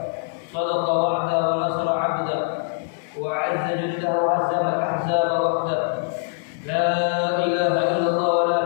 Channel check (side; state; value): right; silent; digital silence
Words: صدق وعده ونصر عبده وأعز جنده وهزم الأحزاب وحده. لا إله إلا الله ولا